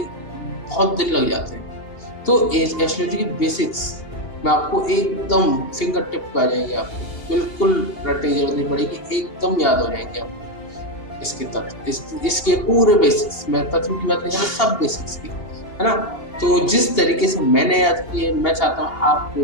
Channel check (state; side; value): late; right; 2.8 ms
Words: दिन लग जाते हैं। तो एस्ट्रोलॉजी की बेसिक्स मैं आपको एकदम फिंगर टिप पे आ जाएंगे, आपको बिल्कुल रटने की जरूरत नहीं पड़ेगी, एकदम याद हो जाएंगे आपको इसके तत्व, इसके पूरे बेसिक्स। मैं तत्व की बात नहीं कर रहा, सब बेसिक्स की, है ना। तो जिस तरीके से मैंने याद किए, मैं चाहता हूँ आपको